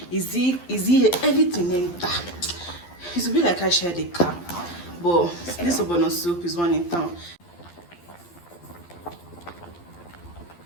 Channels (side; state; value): right; late; 12 ms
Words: Is he everything enter? It will be like I shared a cap, but this ogbono soup is one in town.